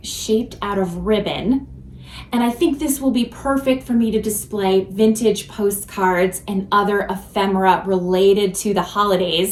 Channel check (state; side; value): identical; both; correlation 1.00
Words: shaped out of ribbon. And I think this will be perfect for me to display vintage postcards and other ephemera related to the